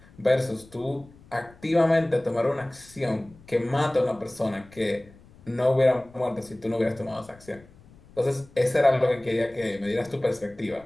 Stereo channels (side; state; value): left; noise; rumble, 24 dB below the sound